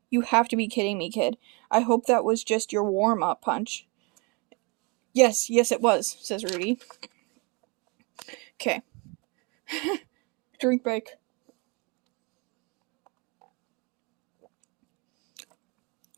You have to be kidding me, kid. I hope that was just your warm-up punch. Yes, it was, says Rudy. Okay. Drink break.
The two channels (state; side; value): quieter; left; 30.4 dB